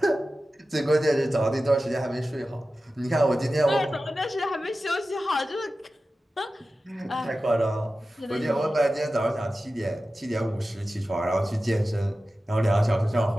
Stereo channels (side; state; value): both; normal; correlation 0.94